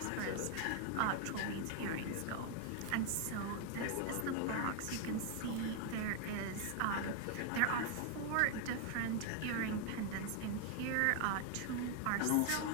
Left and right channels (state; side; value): different; both; correlation 0.01